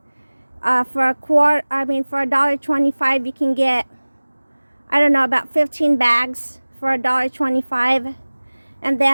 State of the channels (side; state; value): both; inverted; correlation -1.00